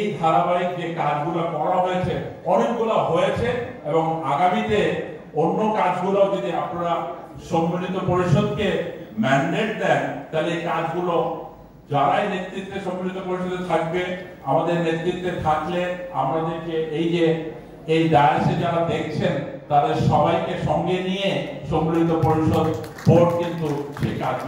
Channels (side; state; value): both; identical; correlation 1.00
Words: ধারাবাহিক যে কাজগুলো করা হয়েছে, অনেকগুলো হয়েছে, এবং আগামীতে অন্য কাজগুলো যদি আপনারা সম্মিলিত পরিষদকে ম্যান্ডেট দেন, তাহলে এই কাজগুলো যারাই নেতৃত্বে সম্মিলিত পরিষদে থাকবে, আমাদের নেতৃত্বে থাকলে আমাদেরকে এই ডায়াসে যারা দেখছেন তাদের সবাইকে সঙ্গে নিয়ে সম্মিলিত পরিষদ বোর্ড কিন্তু সেই